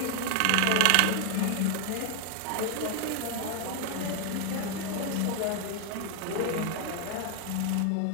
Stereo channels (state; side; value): different; both; correlation 0.00